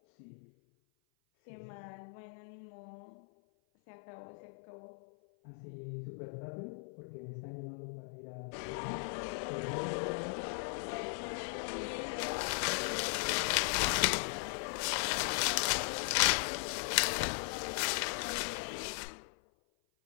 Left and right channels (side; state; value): right; silent; 53 dB below the other